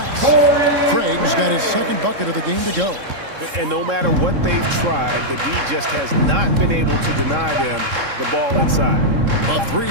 Craig's got his 2nd bucket of the game to go. And no matter what they've tried, the D just has not been able to deny them the ball inside. A 3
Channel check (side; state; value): left; late; 3.7 ms